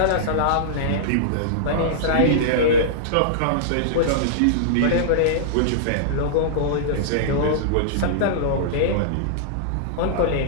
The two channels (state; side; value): different; both; correlation -0.02